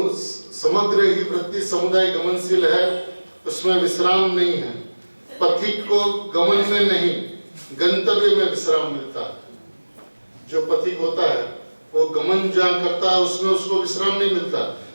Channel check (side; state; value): both; inverted; correlation -1.00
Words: समग्र ही वृत्ति समुदाय गमनशील है, उसमें विश्राम नहीं है। पथिक को गमन में नहीं, गंतव्य में विश्राम मिलता है। जो पथिक होता है वो गमन जहाँ करता है उसमें उसको विश्राम नहीं मिलता,